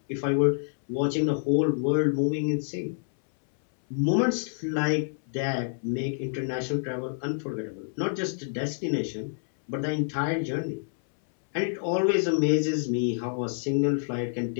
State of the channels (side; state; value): right; silent; 60 dB below the other